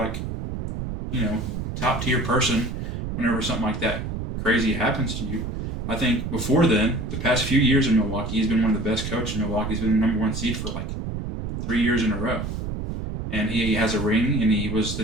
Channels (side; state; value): right; noise; rumble, 4 dB below the sound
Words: top tier person whenever something like that crazy happens to you. I think before then, the past few years in Milwaukee, he's been one of the best coaches in Milwaukee. He's been the number 1 seed for like 3 years in a row. And he has a ring, and he was the